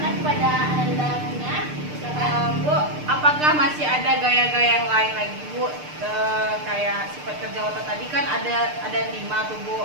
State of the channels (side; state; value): left; late; 6.7 ms